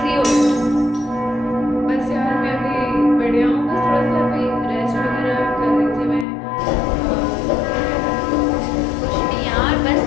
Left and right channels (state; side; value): drops out; right; at 6.2 s